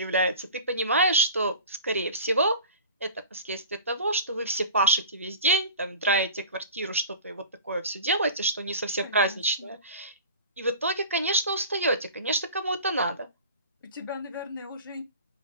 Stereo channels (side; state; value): both; inverted; correlation -0.36